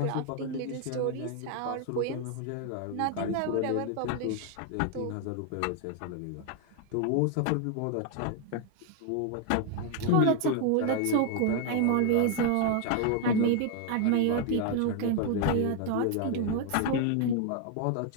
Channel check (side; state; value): both; different; correlation 0.00